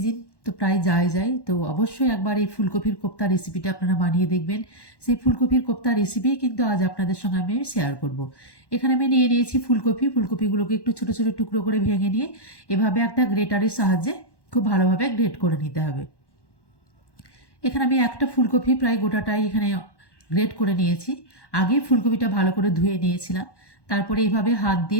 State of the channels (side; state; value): right; late; 1.1 ms